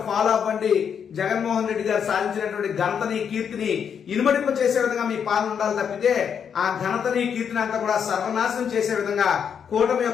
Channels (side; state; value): right; quieter; 7.5 dB